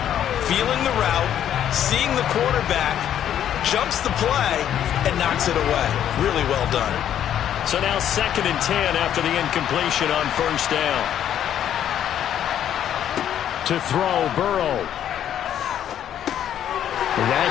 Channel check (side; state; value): right; quieter; 10.3 dB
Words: Feeling the route, seeing the quarterback, jumps the play, and knocks it away. Really well done. So now 2nd and 10 after the incompletion on first down. To throw, Burrow.